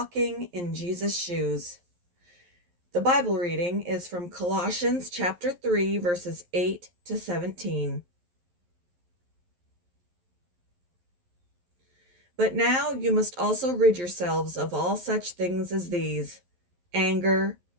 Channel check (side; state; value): left; late; 11 ms